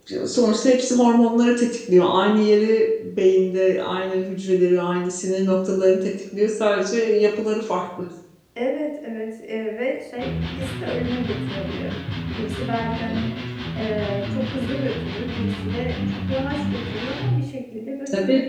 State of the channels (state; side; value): identical; both; correlation 1.00